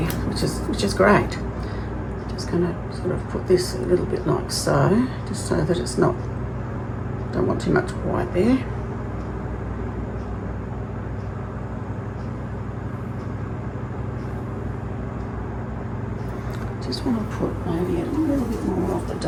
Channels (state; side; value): identical; both; correlation 1.00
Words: which is great. Just going to sort of put this a little bit like so, just so that it's not, don't want too much white there. Just want to put maybe a little bit more of the